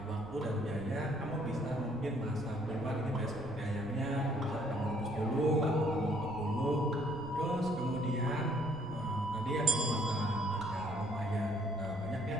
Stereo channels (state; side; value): noise; right; rumble, 15 dB below the sound